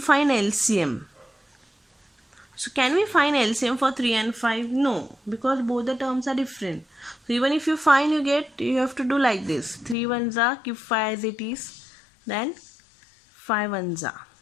LCM. So can we find LCM for 3 and 5? No, because both the terms are different. So even if you find, you have to do like this. 3 ones are, keep 5 as it is, then 5 ones are.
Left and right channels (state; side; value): drops out; right; at 10.0 s